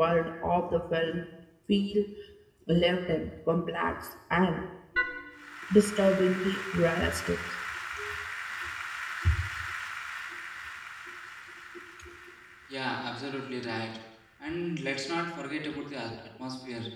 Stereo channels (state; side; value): identical; both; correlation 1.00